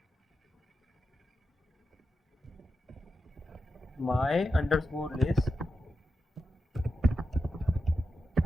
my underscore list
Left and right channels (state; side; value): normal; both; correlation 0.89